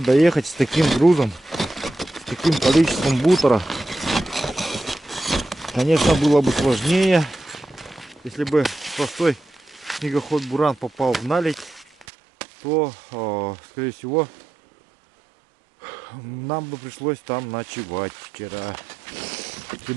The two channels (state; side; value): drops out; left; at 12.1 s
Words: с таким грузом, с таким количеством бутера, конечно, было бы сложнее. Если бы простой снегоход буран попал в наледь, то, скорее всего, нам бы пришлось там ночевать вчера. Если